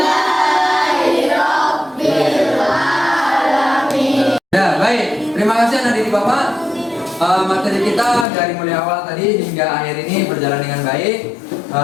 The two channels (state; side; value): drops out; right; at 8.2 s